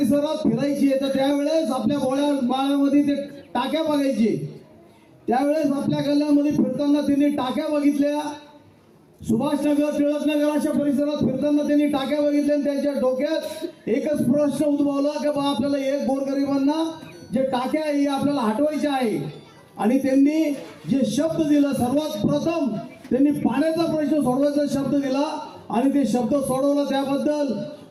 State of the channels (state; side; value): identical; both; correlation 1.00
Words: फिरायचे तर त्यावेळेस आपल्या बाळामध्ये ते टाक्या बघायचे. त्यावेळेस आपल्या गल्ल्यामध्ये फिरताना त्यांनी टाक्या बघितल्या. सुभाषनगर, टिळकनगर अशा परिसरात फिरताना त्यांनी टाक्या बघितल्या आणि त्यांच्या डोक्यात एकच प्रश्न उद्भवला की बा आपल्याला एक गोरगरिबांना जे टाक्या आहे आपल्याला हटवायच्या आहे. आणि त्यांनी जे शब्द दिला, सर्वात प्रथम त्यांनी पाण्याचा प्रश्न सोडवायचा शब्द दिला आणि ते शब्द सोडवला. त्याबद्दल